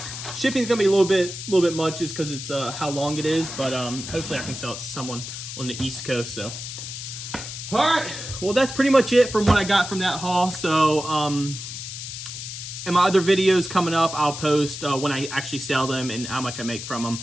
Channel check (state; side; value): noise; left; hiss, 8 dB below the sound